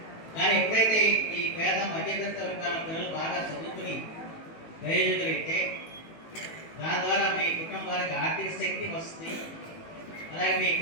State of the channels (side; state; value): right; late; 18 ms